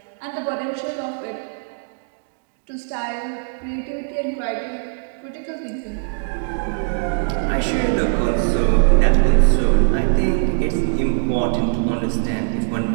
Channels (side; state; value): left; silent; digital silence